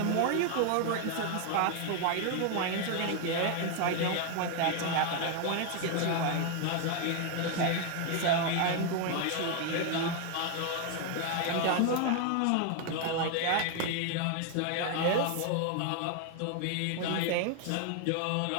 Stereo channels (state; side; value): different; both; correlation 0.01